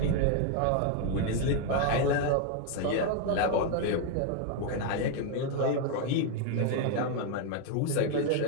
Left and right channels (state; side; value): different; both; correlation 0.00